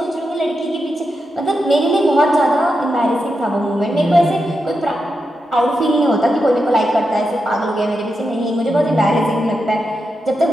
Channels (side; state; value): both; normal; correlation 0.87